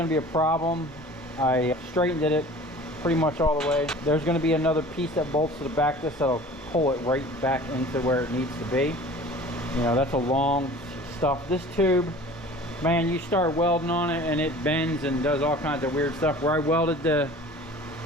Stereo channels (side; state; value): both; normal; correlation 0.44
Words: to be a problem. I straightened it pretty much all the way. There's going to be another piece that bolts to the back of this that'll pull it right back into where it needs to be. You know, that's a long stuff. This tube, man, you start welding on it and it bends and does all kinds of weird stuff. Where I welded the